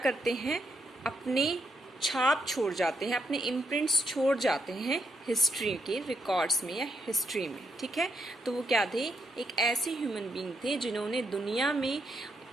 हैं, अपने छाप छोड़ जाते हैं, अपने इम्प्रिंट्स छोड़ जाते हैं हिस्ट्री के रिकॉर्ड्स में या हिस्ट्री में, ठीक है। तो वो क्या थे? एक ऐसे ह्यूमन बीइंग थे जिन्होंने दुनिया में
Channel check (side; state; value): both; normal; correlation 0.78